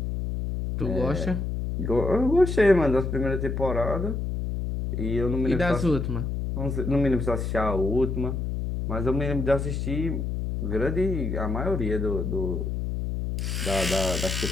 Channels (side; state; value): left; noise; hum, 2 dB below the sound